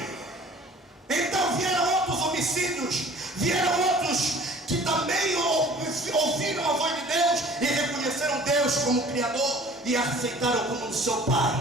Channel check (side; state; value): both; normal; correlation 0.48